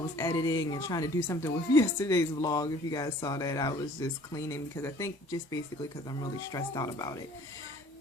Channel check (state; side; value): normal; both; correlation 0.52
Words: editing and trying to do something with yesterday's vlog. If you guys saw that, I was just cleaning because I think just basically because I'm really stressed out about it.